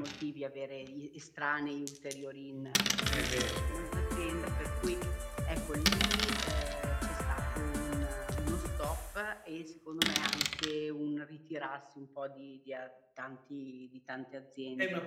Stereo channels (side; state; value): both; identical; correlation 1.00